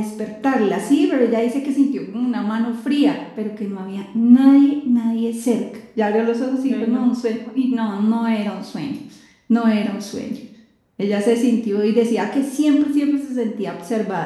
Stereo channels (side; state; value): both; identical; correlation 1.00